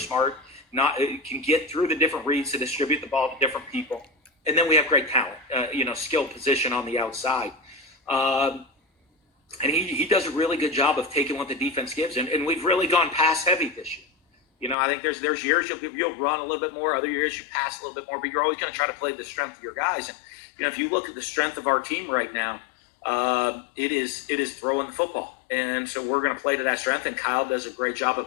can get through the different reads to distribute the ball to different people. And then we have great talent, skill position on the outside. And he does a really good job of taking what the defense gives. And we've really gone pass heavy this year. I think there's years you'll run a little bit more. Other years you pass a little bit more. But you're always going to try to play the strength of your guys. And, if you look at the strength of our team right now, it is throwing the football. And so we're going to play to that strength. And Kyle does a great job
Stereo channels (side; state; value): right; drops out; at 14.8 s